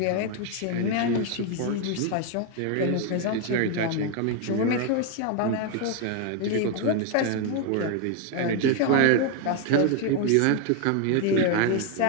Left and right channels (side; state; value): both; different; correlation 0.01